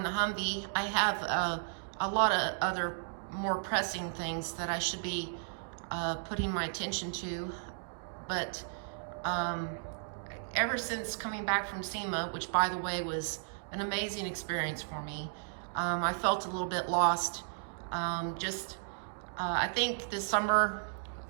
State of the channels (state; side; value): silent; left; digital silence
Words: the Humvee. I have a lot of other more pressing things that I should be putting my attention to, but ever since coming back from SEMA, which by the way was an amazing experience for me, I felt a little bit lost. I think this summer,